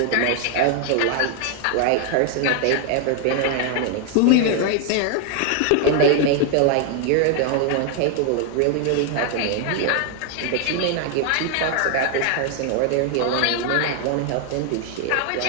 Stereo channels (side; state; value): both; different; correlation 0.00